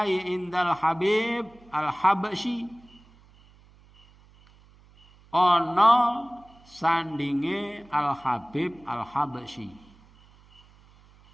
Indal Habib Al-Habsyi. Ono sandinge Al-Habib Al-Habsyi.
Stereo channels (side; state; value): right; noise; hum, 27 dB below the sound